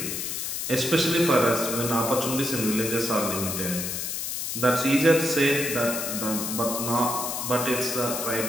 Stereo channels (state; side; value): noise; left; hiss, 3 dB below the sound